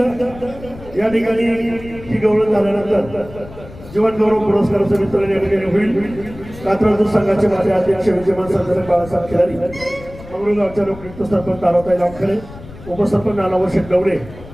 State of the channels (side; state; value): left; noise; rumble, 16 dB below the sound